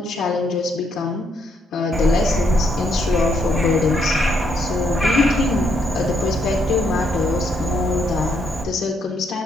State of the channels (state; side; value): normal; both; correlation 0.74